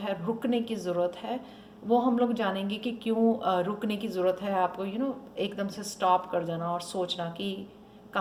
रुकने की ज़रूरत है। वो हम लोग जानेंगे कि क्यों रुकने की ज़रूरत है आपको। एकदम से स्टॉप कर जाना और सोचना कि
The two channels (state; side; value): identical; both; correlation 1.00